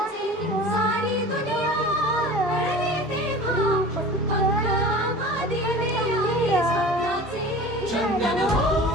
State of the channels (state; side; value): normal; both; correlation 0.38